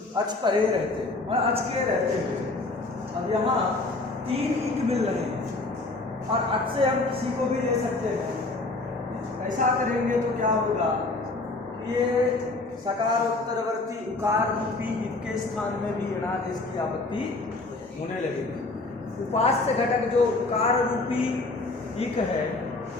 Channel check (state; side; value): quieter; right; 3.2 dB